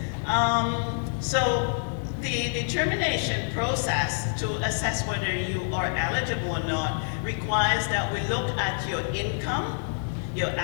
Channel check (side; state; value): right; silent; 59 dB below the other